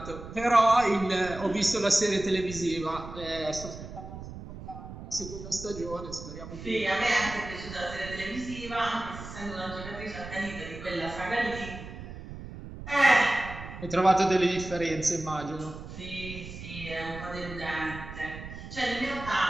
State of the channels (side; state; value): right; noise; rumble, 11 dB below the sound